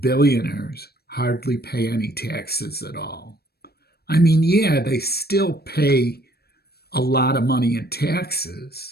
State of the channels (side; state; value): right; late; 0.46 ms